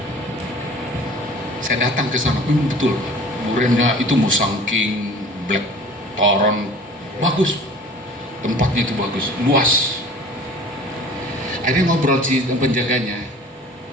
Saya datang ke sana, betul duriannya itu Musang King, Black Toron, bagus, tempatnya itu bagus, luas. Akhirnya ngobrol si penjaganya,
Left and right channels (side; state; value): both; normal; correlation 0.45